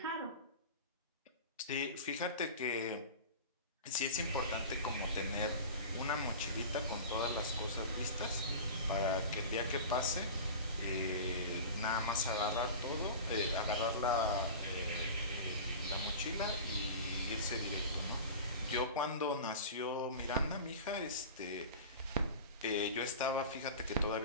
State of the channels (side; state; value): both; inverted; correlation -0.33